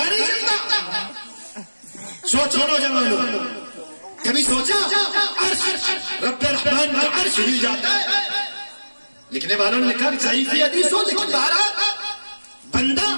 نہیں چلتا۔ سوچو نوجوانوں، کبھی سوچا عرش رب رحمان کا عرش ہل جاتا ہے؟ لکھنے والوں نے لکھا ضعیف حدیث ہو، لیکن بہرحال بندہ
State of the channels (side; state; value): both; inverted; correlation -1.00